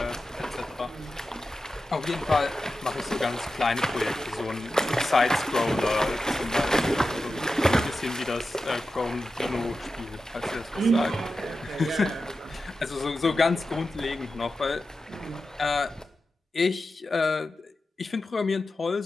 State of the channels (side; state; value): both; normal; correlation 0.92